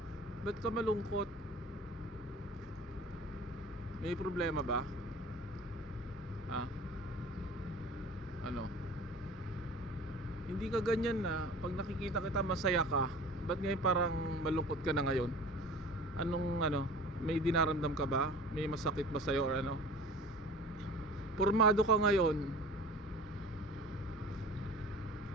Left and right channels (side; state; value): both; normal; correlation 0.42